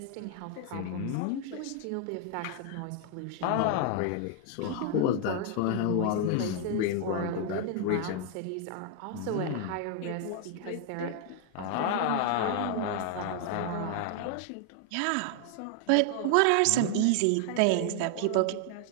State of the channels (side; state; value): both; different; correlation 0.00